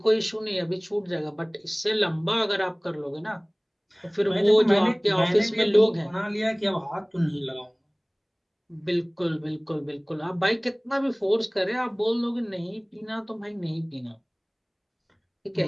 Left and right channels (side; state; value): both; identical; correlation 1.00